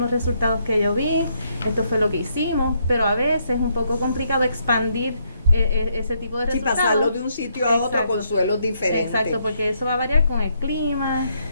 los resultados que yo vi, esto fue lo que hicimos, pero a veces es un poco complicado expandir ese tipo de resultados. Sí, pasarlo de un sitio a otro con suelos diferentes. Exacto, porque eso va a variar con el clima,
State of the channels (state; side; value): inverted; both; correlation -0.75